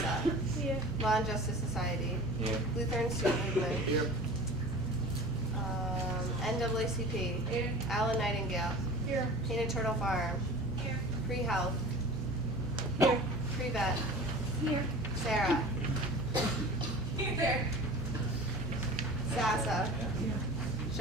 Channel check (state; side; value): normal; both; correlation 0.38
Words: Here. Law and Justice Society. Here. Lutheran Student Movement. Here. NAACP. Here. Alan Nightingale. Here. Painted Turtle Farm. Here. Free Health. Here. Free Vet. Here. Sarah. Here. SASA.